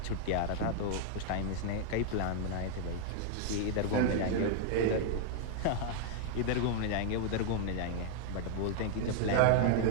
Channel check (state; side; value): different; both; correlation -0.01